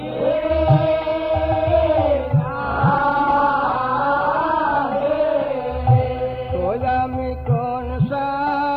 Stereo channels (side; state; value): both; identical; correlation 1.00